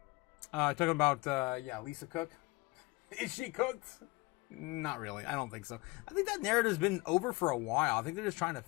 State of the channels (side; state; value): right; quieter; 24.3 dB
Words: Talking about Lisa Cook. Is she cooked? Not really. I don't think so. I think that narrative's been over for a while. I think they're just trying to